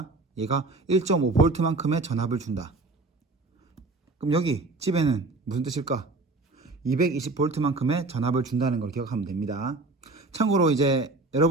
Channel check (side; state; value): left; quieter; 3.3 dB